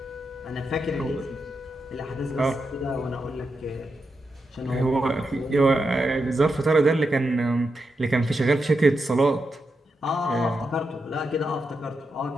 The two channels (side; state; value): both; normal; correlation 0.86